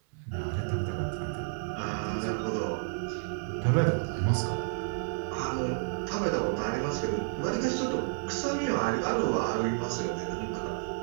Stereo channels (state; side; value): silent; left; 57 dB below the other